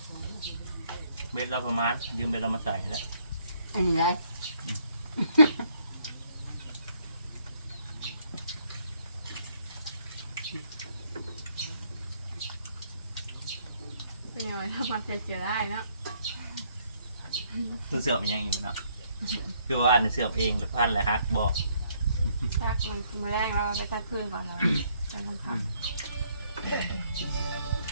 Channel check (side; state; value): both; inverted; correlation -0.68